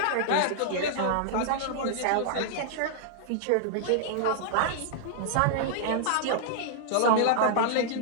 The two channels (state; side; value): different; both; correlation -0.01